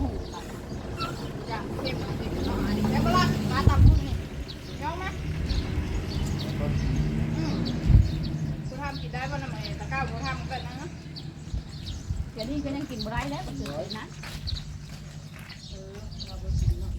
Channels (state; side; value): identical; both; correlation 1.00